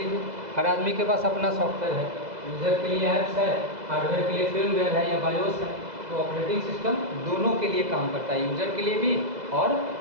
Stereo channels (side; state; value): left; late; 2.0 ms